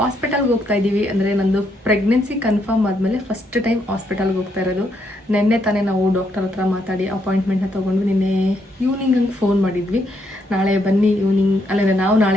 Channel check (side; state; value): both; normal; correlation 0.75